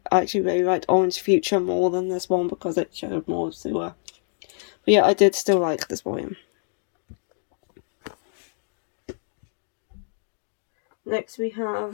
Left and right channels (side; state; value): right; silent; 59 dB below the other